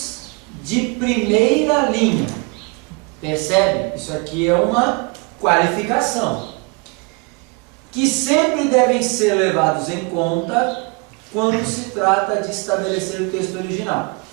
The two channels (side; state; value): left; quieter; 30.7 dB